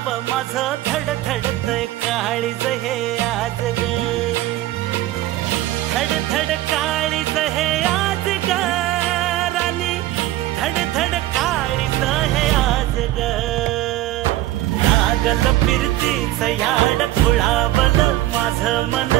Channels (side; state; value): left; quieter; 15.3 dB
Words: माझं धडधडतय काळीज हे आज ग धडधड काळीज हे आज ग राणी धडधड काळीज हे आज ग लागल फिरतीच याड खुळावलं माझं मन